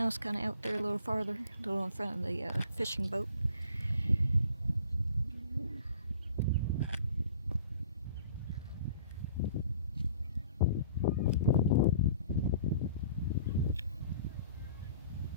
kind of out there a little farther, a little in front of the fishing boat.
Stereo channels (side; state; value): both; inverted; correlation -0.51